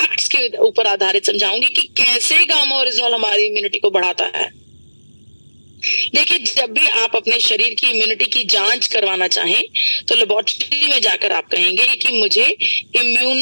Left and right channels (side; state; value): both; inverted; correlation -1.00